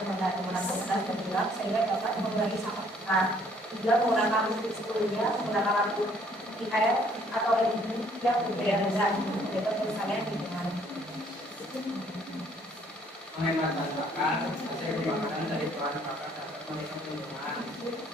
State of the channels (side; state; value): both; normal; correlation 0.62